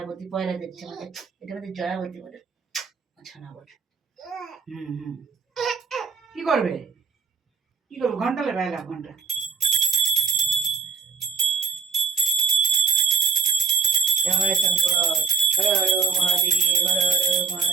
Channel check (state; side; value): quieter; left; 5.6 dB